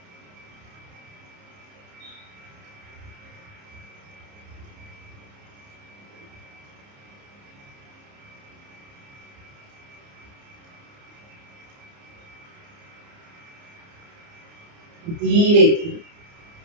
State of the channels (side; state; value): left; late; 29 ms